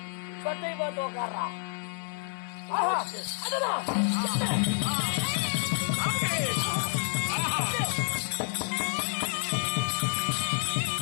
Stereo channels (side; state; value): right; silent; 57 dB below the other